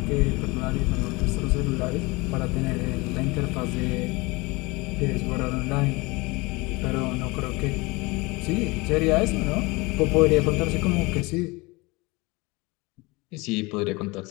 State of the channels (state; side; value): quieter; right; 24.4 dB